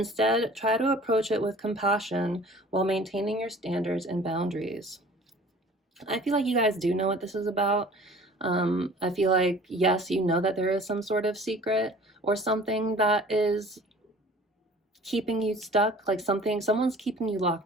try to approach it with compassion while maintaining your standards and boundaries. I feel like you guys do know what this is about. I feel like, yes, you know that there is some sort of secret or something that is keeping you stuck, like someone's keeping you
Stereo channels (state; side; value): normal; both; correlation 0.47